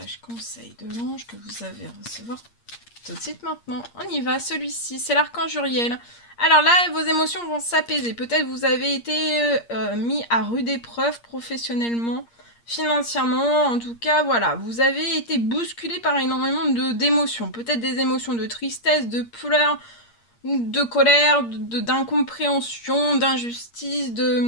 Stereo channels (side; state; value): right; late; 8.6 ms